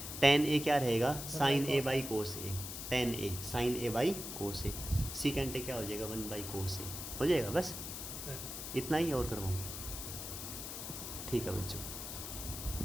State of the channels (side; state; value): left; noise; hiss, 7 dB below the sound